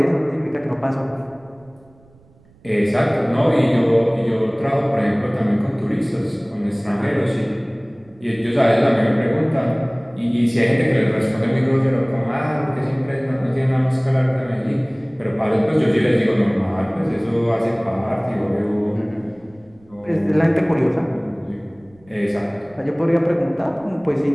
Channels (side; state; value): right; noise; rumble, 29 dB below the sound